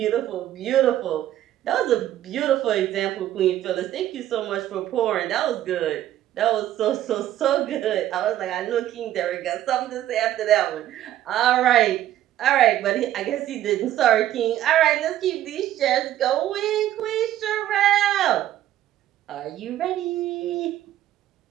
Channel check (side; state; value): left; quieter; 12.7 dB